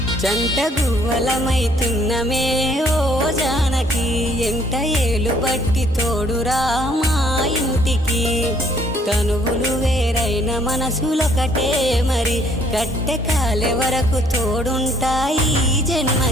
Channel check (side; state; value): both; normal; correlation 0.63